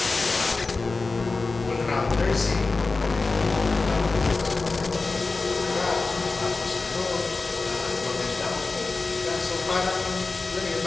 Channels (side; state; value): right; quieter; 3.8 dB